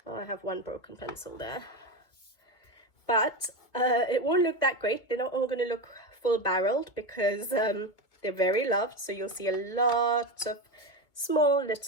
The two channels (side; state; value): right; late; 2.1 ms